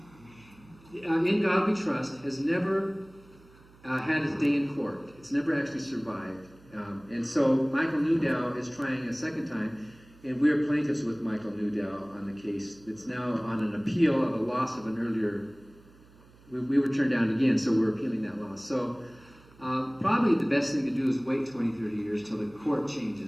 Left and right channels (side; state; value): right; noise; hum, 26 dB below the sound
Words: In God We Trust has never had its day in court. It's never actually survived. And so Michael Newdow is trying a second time, and we're plaintiffs with Michael Newdow on the case. It's now on an appeal of a loss of an earlier, we were turned down again, so we're appealing that loss. So probably the best thing to do is wait 20, 30 years till the court